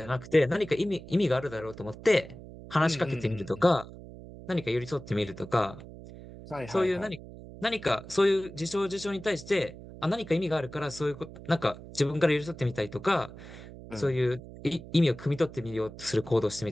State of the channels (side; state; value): right; noise; hum, 15 dB below the sound